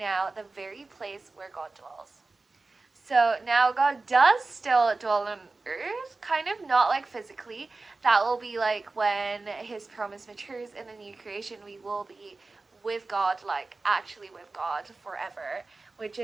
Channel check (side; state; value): left; quieter; 3.6 dB